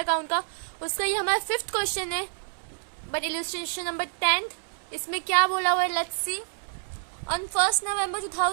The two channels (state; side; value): silent; left; 60 dB below the other